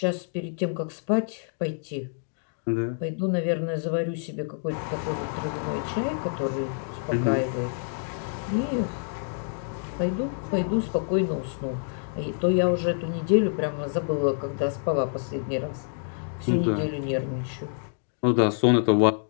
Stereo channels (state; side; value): silent; right; digital silence